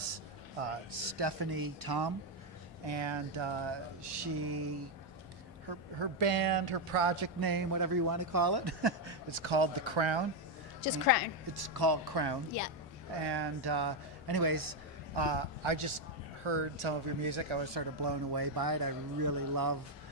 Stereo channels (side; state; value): both; normal; correlation 0.03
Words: Stephanie Tom, and her band, her project name, whatever you want to call it, it's called The Crown. Just Crown. It's called Crown. Yeah. And anyways, I just heard some of your music. I was sort of blown away by it. I really love